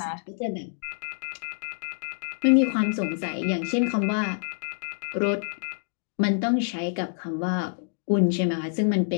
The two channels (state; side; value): silent; right; digital silence